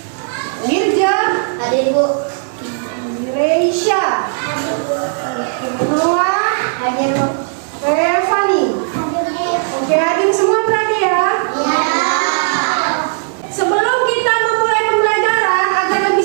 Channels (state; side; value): silent; left; 68 dB below the other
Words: Mirja, Reisha, oke, Noah, Revani, oke, adik semua berani ya? Sebelum kita memulai pembelajaran agar lebih